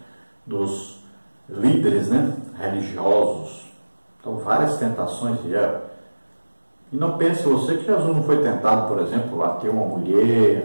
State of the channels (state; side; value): inverted; both; correlation -1.00